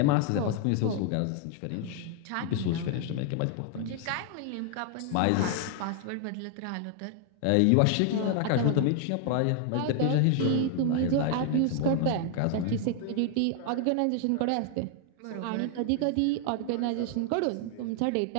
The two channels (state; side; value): different; both; correlation 0.00